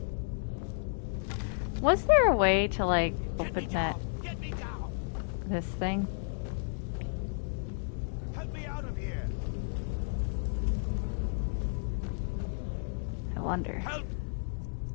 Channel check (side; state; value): right; silent; digital silence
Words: Was there a way to, like, open that... this thing? Help me out of here! I wonder. Help!